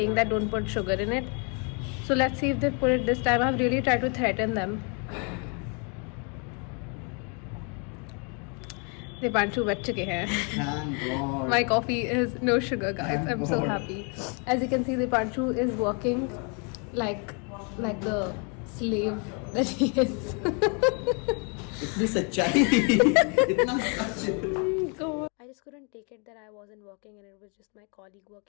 that don't put sugar in it. So let's see if they put it this time. I've really tried to threaten them. Dipanshu बच चुके हैं. Thank God. My coffee is no sugar, guys. Thank I'm so God. happy. As you can see, Dipanshu is working like the slave that he is. इतनी सच्चाई इतना सच I just couldn't take it that I wasn't working and it was just my colleague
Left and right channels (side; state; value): right; quieter; 36.3 dB